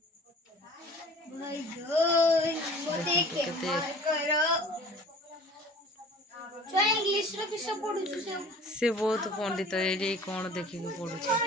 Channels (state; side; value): normal; both; correlation 0.46